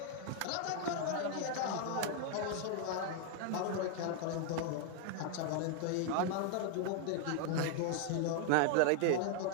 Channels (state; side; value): different; both; correlation 0.00